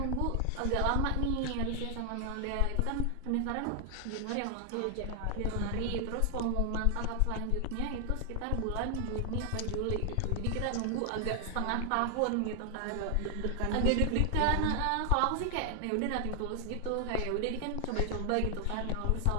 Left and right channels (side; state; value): both; different; correlation 0.00